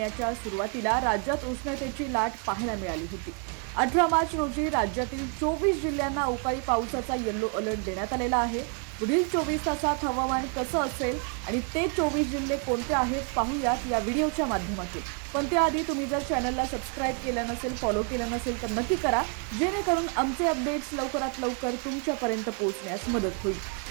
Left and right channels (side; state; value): left; quieter; 38.7 dB